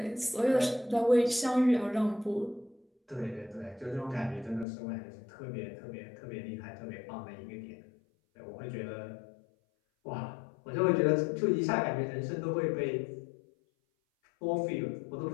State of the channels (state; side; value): drops out; right; at 4.7 s